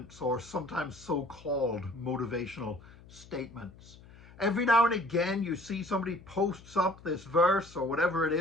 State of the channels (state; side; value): noise; left; hum, 21 dB below the sound